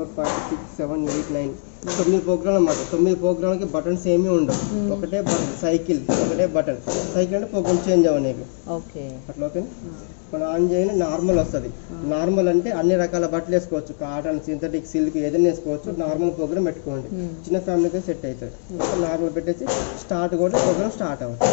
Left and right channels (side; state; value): right; silent; digital silence